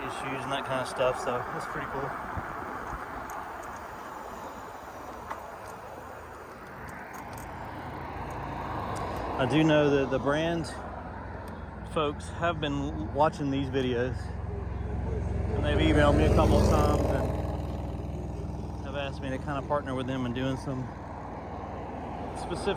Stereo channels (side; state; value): both; identical; correlation 1.00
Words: issues and that kind of stuff. So it's pretty cool. I do know that the brand folks have been watching these videos, and they've emailed me a couple of times and have asked me to kind of partner with them in doing some